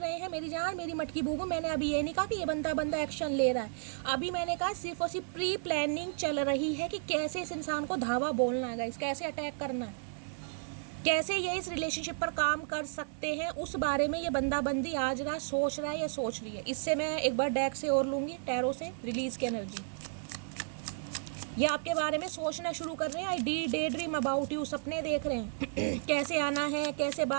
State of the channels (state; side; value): silent; left; digital silence